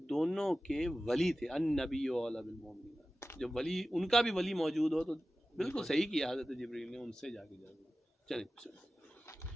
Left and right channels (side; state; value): both; normal; correlation 0.95